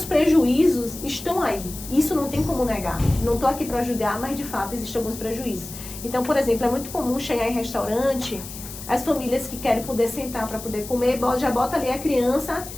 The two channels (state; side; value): noise; left; hiss, 12 dB below the sound